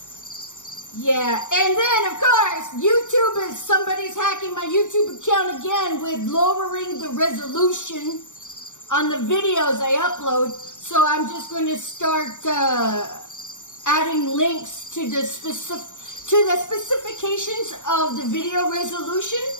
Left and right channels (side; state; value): right; late; 0.85 ms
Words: yeah. And then, of course, YouTube is, somebody's hacking my YouTube account again with lowering the resolution on the videos I upload. So I'm just going to start adding links to the specifications of the video resolution